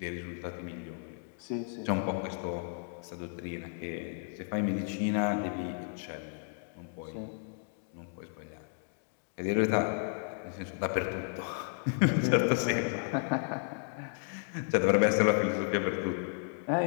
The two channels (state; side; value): silent; right; digital silence